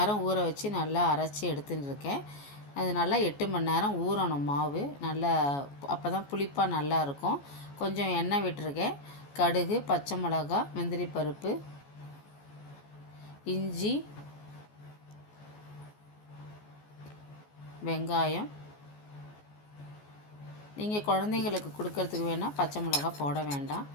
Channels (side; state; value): right; late; 14 ms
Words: ஊற வச்சு நல்லா அரைச்சி எடுத்துன்னு இருக்கேன். அது நல்லா 8 மணி நேரம் ஊறணும் மாவு. நல்லா அப்போ தான் புளிப்பாக நல்லா இருக்கும். கொஞ்சம் எண்ணெய் விட்டுருக்கேன். கடுகு, பச்சை மிளகா, முந்திரி பருப்பு, இஞ்சி, வெங்காயம். நீங்கள் குழந்தைங்களுக்கு கொடுக்கறதுக்கு வேணால் பச்சை மிளகா போட வேண்டாம்.